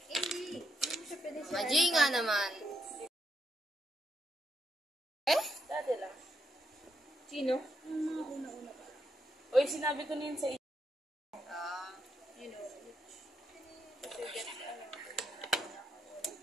Hindi mo siya pwede siya. Maji nga naman. Dati lang. Sino? Yung mga una-una pa. Uy, sinabi ko na yun sa iyo. You know, Kasi get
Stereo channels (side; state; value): both; normal; correlation 0.79